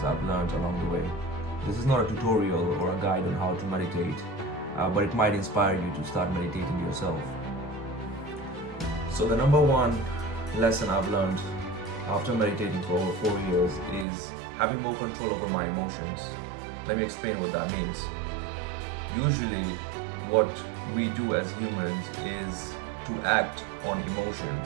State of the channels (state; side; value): drops out; left; at 14.1 s